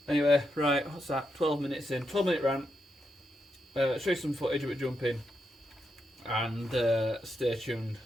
anyway, right, what's that? 12 minutes in, 12-minute rant. Show you some footage of it jumping, and stay tuned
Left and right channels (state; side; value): normal; both; correlation 0.83